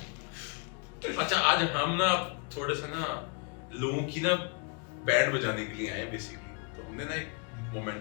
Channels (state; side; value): quieter; right; 35.1 dB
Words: अच्छा, आज हम ना थोड़े से ना लोगों की ना बैंड बजाने के लिए आए बेसिकली, तो हमने ना एक